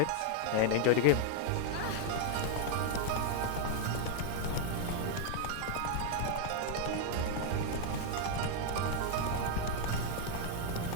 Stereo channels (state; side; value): different; both; correlation 0.00